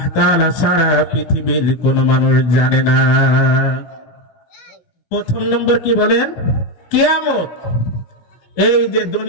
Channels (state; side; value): late; right; 17 ms